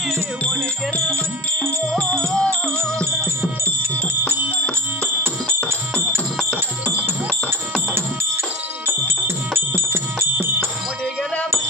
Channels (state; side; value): normal; both; correlation 0.35